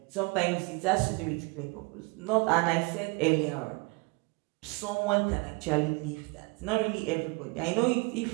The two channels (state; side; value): quieter; left; 28.4 dB